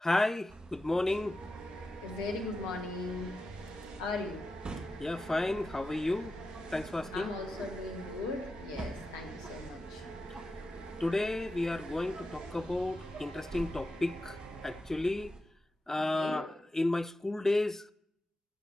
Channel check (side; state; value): both; normal; correlation 0.91